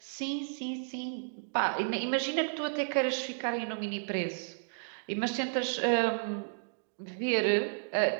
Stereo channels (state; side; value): silent; left; digital silence